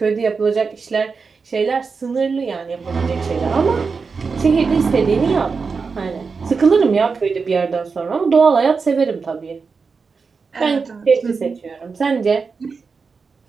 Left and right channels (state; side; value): quieter; left; 5.0 dB